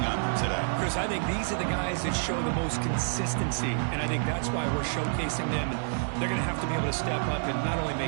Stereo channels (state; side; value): silent; left; digital silence